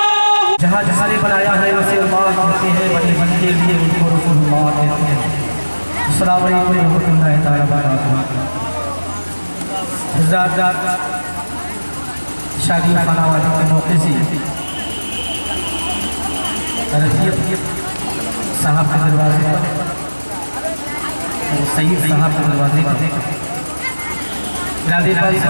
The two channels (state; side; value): inverted; both; correlation -1.00